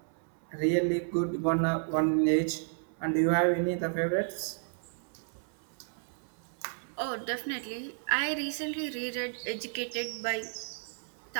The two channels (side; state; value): left; silent; 56 dB below the other